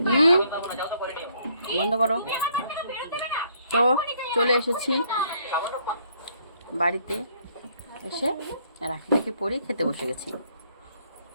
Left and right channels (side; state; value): both; inverted; correlation -0.66